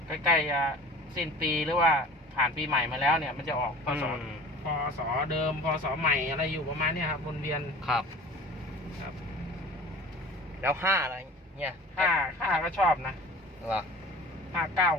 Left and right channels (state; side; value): normal; both; correlation 0.42